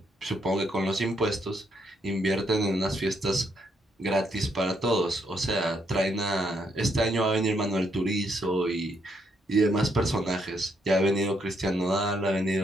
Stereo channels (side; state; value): both; normal; correlation 0.75